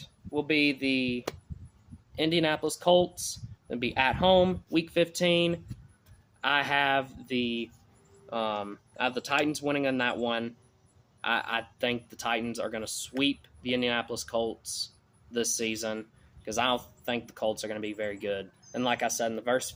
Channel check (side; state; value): both; identical; correlation 1.00